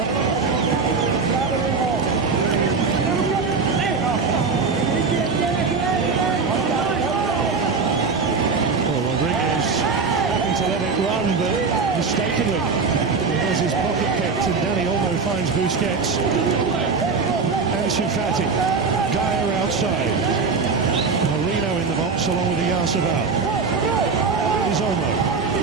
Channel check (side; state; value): left; quieter; 4.9 dB